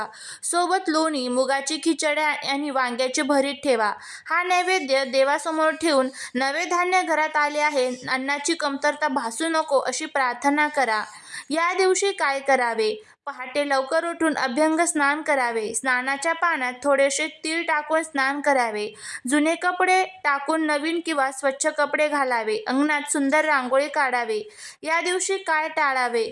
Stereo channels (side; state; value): both; identical; correlation 1.00